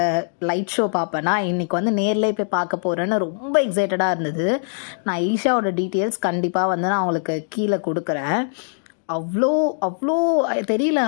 லைட் ஷோ பார்ப்பேன்னா, இன்றைக்கி வந்து நேரில் போய் பார்க்க போகிறேன்னு ரொம்ப எக்ஸைட்டடாக இருந்தது. நான் ஈஷாவோட டீட்டெயில்ஸ் கண்டிப்பாக வந்து நான் அவங்களுக்கு கீழே கொடுக்குறேன். அவ்வளோ அவ்வளோ தெரியல.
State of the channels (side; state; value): right; silent; digital silence